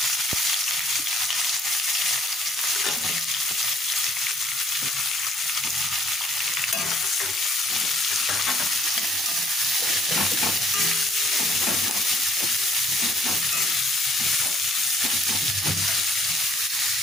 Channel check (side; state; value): both; normal; correlation 0.63